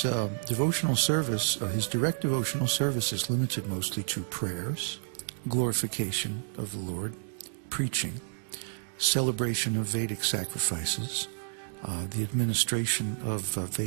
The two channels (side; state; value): left; silent; digital silence